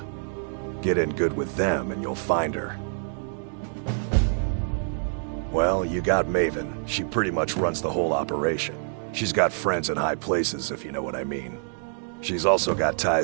Get in good with them and you'll find her. Well, you got Maven. She pretty much runs the whole operation. She's got friends in high places, if you know what I mean. She's also got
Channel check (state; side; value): silent; left; digital silence